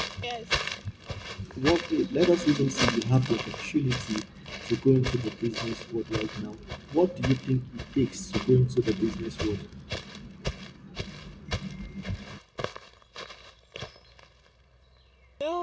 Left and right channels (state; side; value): identical; both; correlation 1.00